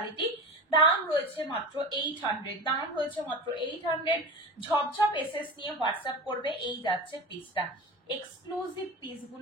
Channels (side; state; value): both; normal; correlation 0.30